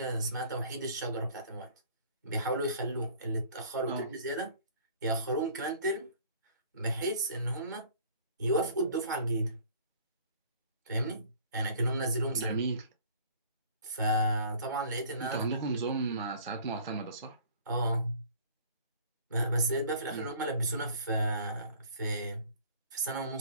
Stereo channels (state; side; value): inverted; both; correlation -0.51